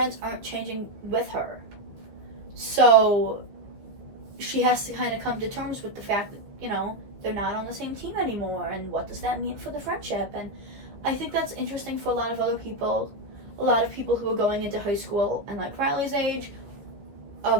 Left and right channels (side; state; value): left; late; 14 ms